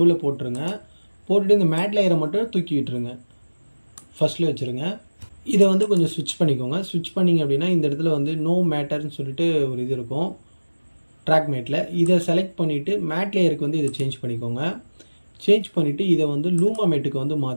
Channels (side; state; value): both; inverted; correlation -1.00